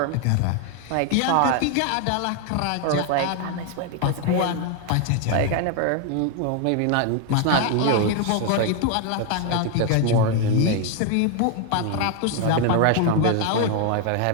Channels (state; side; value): different; both; correlation 0.01